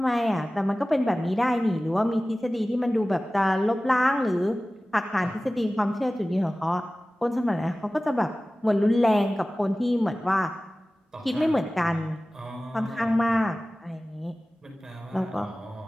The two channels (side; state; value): both; normal; correlation 0.97